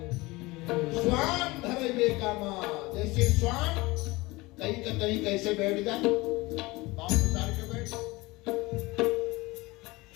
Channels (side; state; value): right; quieter; 22.0 dB